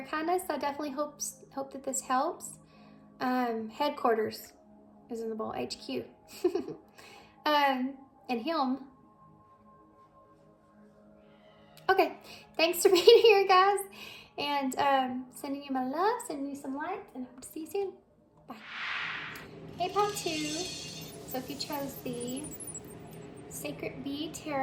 kindness. I definitely hope that this helps. Headquarters is in the bowl, HQ. And him. Okay, thanks for being here, guys. And sending you my love, sending you some light, and I hope to see you soon. Bye. Hey, part 2. So if you chose the Sacred Bee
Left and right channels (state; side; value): identical; both; correlation 1.00